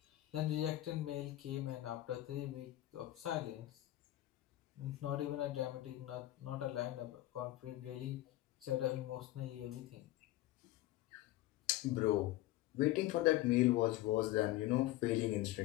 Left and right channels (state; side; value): quieter; right; 15.7 dB